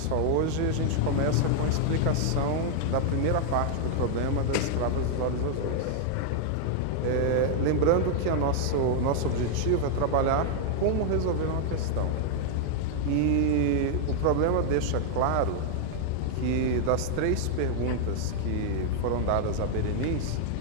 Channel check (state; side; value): different; both; correlation 0.00